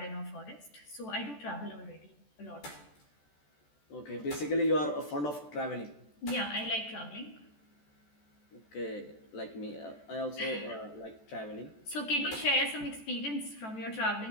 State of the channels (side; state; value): right; late; 14 ms